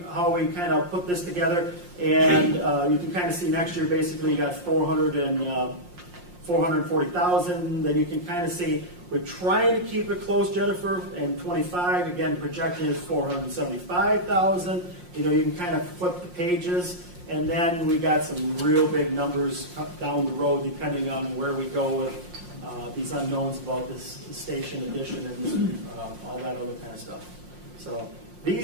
kind of put this together. And you can kind of see next year, basically, you got 440,000. Then you can kind of see we're trying to keep it close, Jennifer, and 25, again, projected is 475,000. You can kind of flip the pages, and then we got some real big numbers down the road, depending on where we go with these unknowns about this station addition and all that other kind of stuff. So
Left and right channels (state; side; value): late; left; 5.6 ms